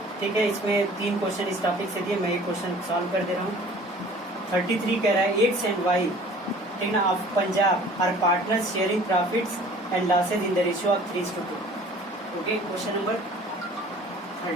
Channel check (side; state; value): both; normal; correlation 0.49